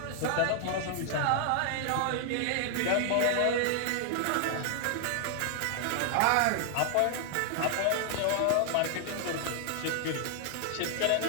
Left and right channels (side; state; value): both; different; correlation 0.00